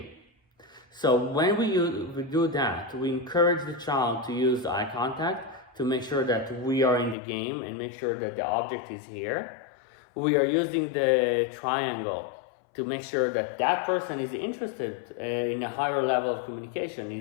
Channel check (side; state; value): right; drops out; at 7.2 s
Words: So when we do that, we encourage the child to use eye contact to make sure that we are in the game and make sure that the object is here. We are using the triangle to make sure that that person is interested in a higher level of communication,